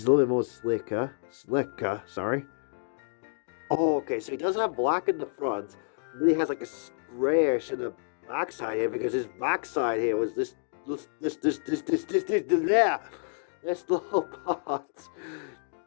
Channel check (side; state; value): right; silent; digital silence